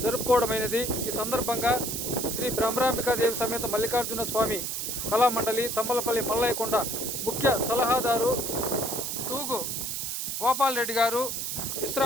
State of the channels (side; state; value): right; noise; hiss, 3 dB below the sound